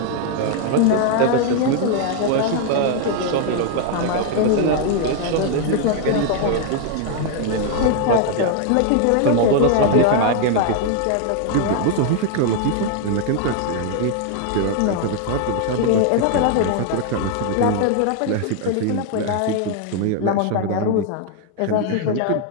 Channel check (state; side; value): different; both; correlation 0.00